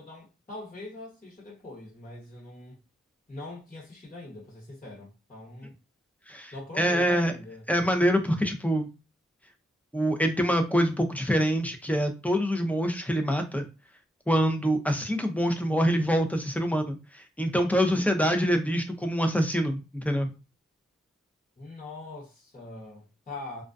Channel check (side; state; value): both; normal; correlation 0.83